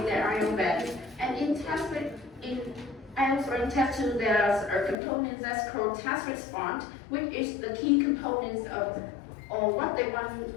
their IELTS band. And in IELTS writing test 2, there's a component that's called task response, which is the key components of what they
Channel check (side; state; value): right; drops out; at 5.0 s